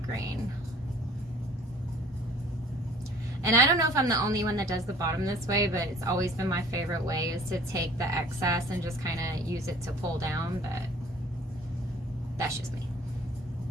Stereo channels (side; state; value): both; normal; correlation 0.52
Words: grain. And I don't know if I'm the only one that does the bottom this way, but it's always been my favorite way is to take the excess and just kind of use it to pull down, but that's just me.